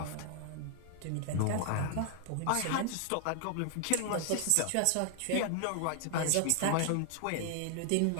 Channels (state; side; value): different; both; correlation 0.00